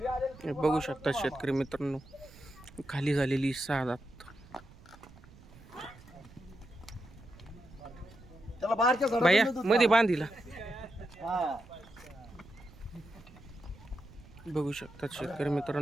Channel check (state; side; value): noise; right; rumble, 21 dB below the sound